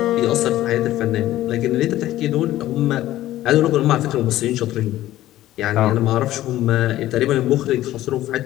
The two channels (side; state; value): right; quieter; 14.6 dB